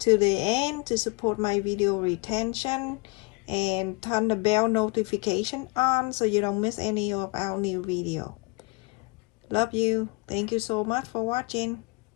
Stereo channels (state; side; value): quieter; right; 26.9 dB